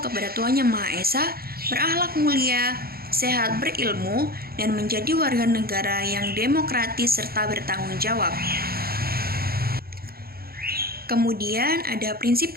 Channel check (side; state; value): left; late; 0.44 ms